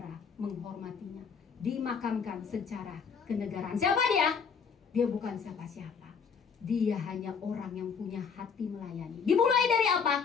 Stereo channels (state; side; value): quieter; right; 6.1 dB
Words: menghormatinya, dimakamkan secara kenegaraan. Siapa dia? Dia bukan siapa-siapa. Dia hanya orang yang punya hati melayani. Dimulai dari